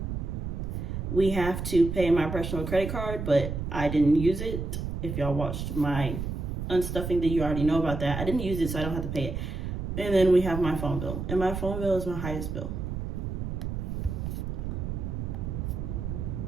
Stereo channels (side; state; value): right; noise; rumble, 4 dB below the sound